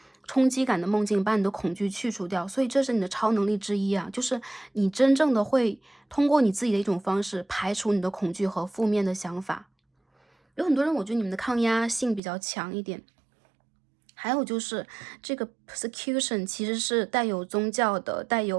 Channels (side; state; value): left; drops out; at 12.2 s